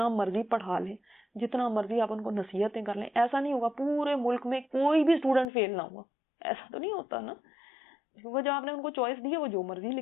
مرضی پڑھا لیں، جتنا مرضی آپ ان کو نصیحتیں کر لیں، ایسا نہیں ہوگا پورے ملک میں کوئی بھی اسٹوڈنٹ فیل نہ ہوا. ایسا تو نہیں ہوتا نا، کیونکہ جب آپ نے ان کو چوائس دی ہے وہ جو مرضی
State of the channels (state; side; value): drops out; right; at 5.5 s